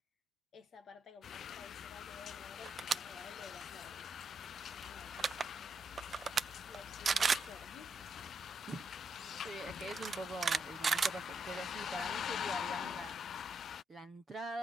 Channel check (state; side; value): normal; both; correlation 0.80